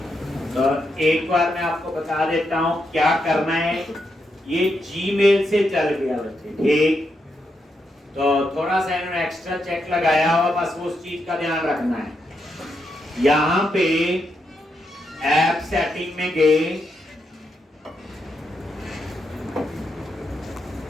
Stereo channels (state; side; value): normal; both; correlation 0.82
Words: तो एक बार मैं आपको बता देता हूं क्या करना है। ये जीमेल से चल गया बच्चे, ठीक। तो थोड़ा सा इन्होंने एक्स्ट्रा चेक लगाया हुआ, बस उस चीज का ध्यान रखना है। यहां पे ऐप सेटिंग में गए,